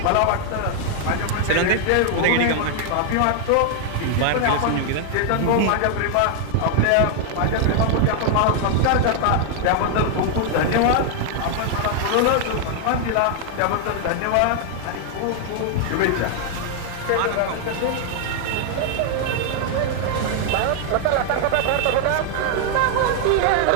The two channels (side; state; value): both; different; correlation 0.00